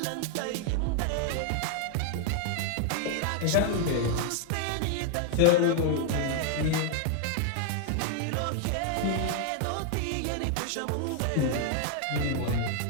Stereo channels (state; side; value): different; both; correlation 0.00